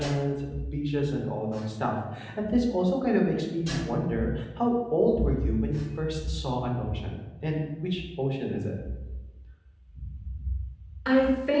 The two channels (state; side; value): identical; both; correlation 1.00